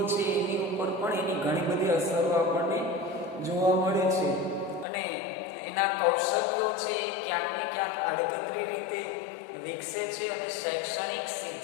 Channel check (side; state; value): right; drops out; at 4.9 s